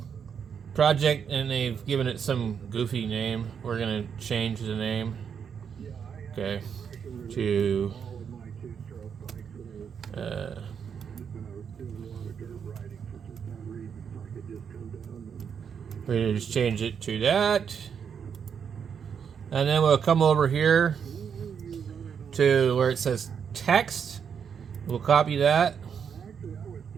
project and they've given it some goofy name. We're gonna change the name, okay, to we're gonna just change it to that, and then we'll come over here to where it says text. We'll copy that,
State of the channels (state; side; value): quieter; left; 7.2 dB